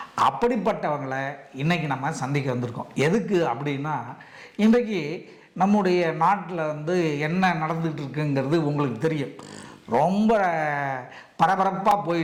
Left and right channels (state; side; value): identical; both; correlation 1.00